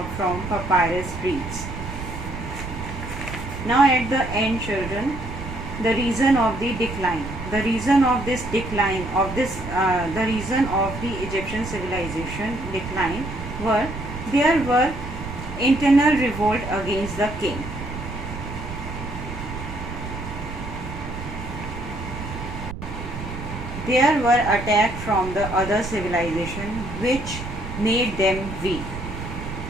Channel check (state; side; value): noise; right; rumble, 8 dB below the sound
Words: from papyrus reeds. Now at the end, children, the reason of the decline. The reason of this decline the reason of the Egyptian civilization decline there were internal revolt against the king. There were attacks from the other civilization which made them weak.